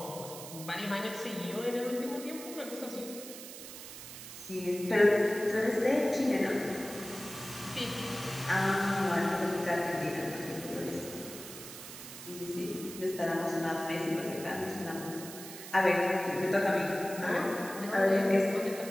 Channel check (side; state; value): right; noise; hiss, 12 dB below the sound